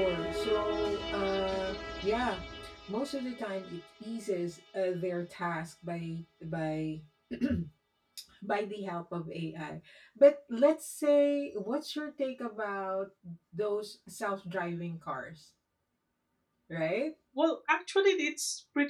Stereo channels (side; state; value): both; identical; correlation 1.00